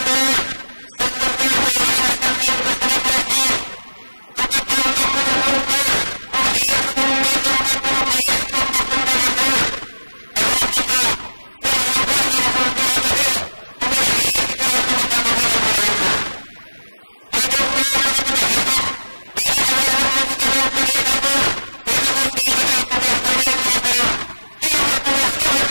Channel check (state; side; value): inverted; both; correlation -1.00